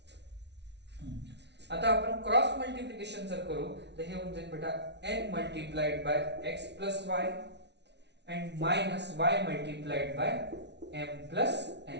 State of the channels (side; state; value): left; late; 0.50 ms